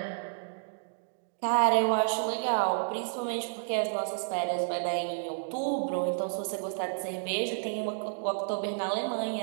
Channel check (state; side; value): silent; left; digital silence